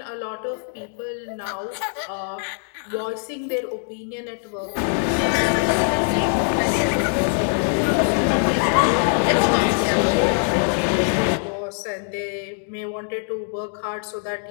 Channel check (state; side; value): silent; right; 59 dB below the other